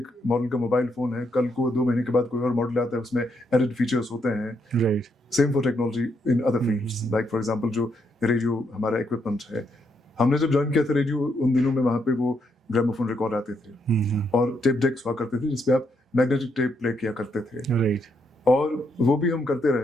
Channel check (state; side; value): normal; both; correlation 0.77